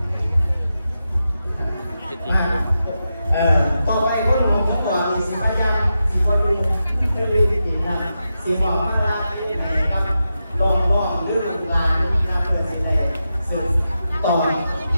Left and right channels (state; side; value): inverted; both; correlation -0.89